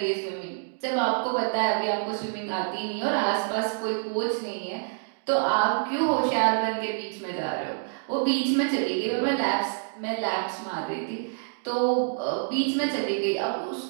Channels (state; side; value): silent; left; digital silence